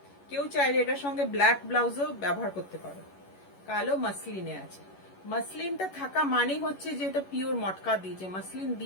কেউ চাইলে এটার সঙ্গে ব্ল্যাক ব্লাউজও ব্যবহার করতে পারো। কালো মাসলিনে আছে, মাসলিনটা থাকা মানেই হচ্ছে যে এটা পিওর মটকা দিয়েছে, মাসলিন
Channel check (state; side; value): late; right; 11 ms